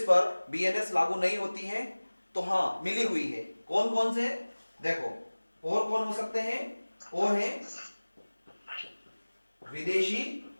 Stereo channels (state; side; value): inverted; both; correlation -1.00